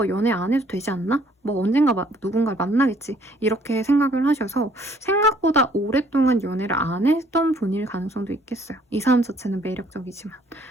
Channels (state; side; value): normal; both; correlation 0.62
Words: 연애 안 해도 되지 않나? 뭐 언젠가 누군가를 만나겠지, 이렇게 생각을 하셔서 생각보다 오랫동안 연애를 안 했던 분일 가능성도 있겠어요. 이 사람 자체는 매력적이지만.